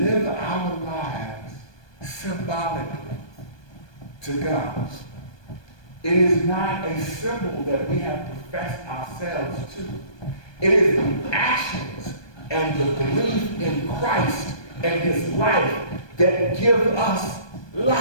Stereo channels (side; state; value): right; late; 1.2 ms